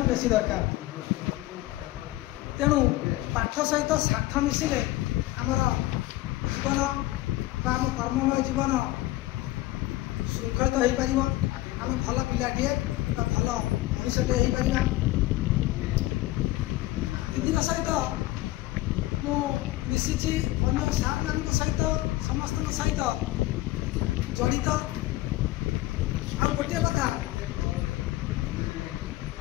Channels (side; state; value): right; quieter; 17.4 dB